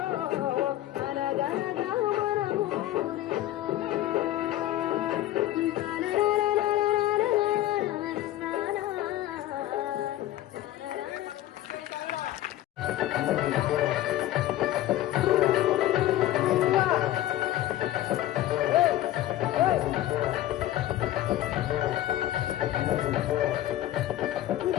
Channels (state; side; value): quieter; right; 14.2 dB